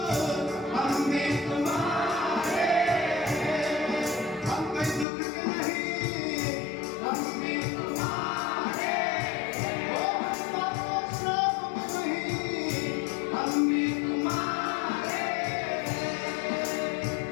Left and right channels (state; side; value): drops out; right; at 5.1 s